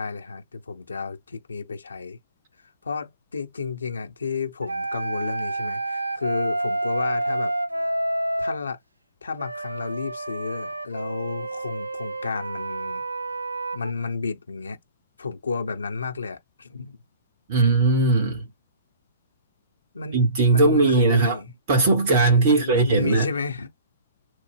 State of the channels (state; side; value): inverted; both; correlation -0.53